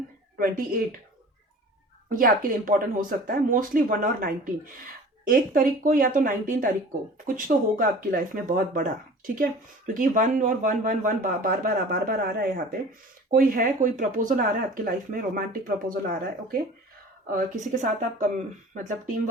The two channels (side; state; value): both; normal; correlation 0.43